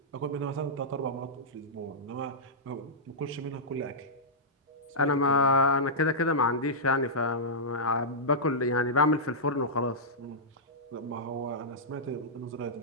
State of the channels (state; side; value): normal; both; correlation -0.12